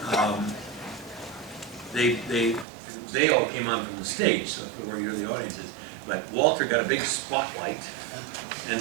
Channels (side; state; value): left; drops out; at 2.7 s